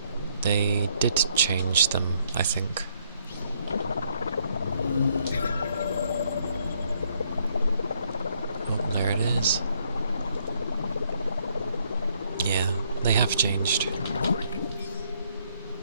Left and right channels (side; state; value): both; inverted; correlation -0.70